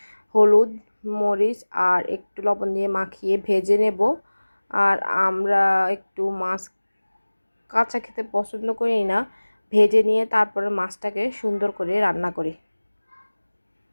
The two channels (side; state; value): both; inverted; correlation -1.00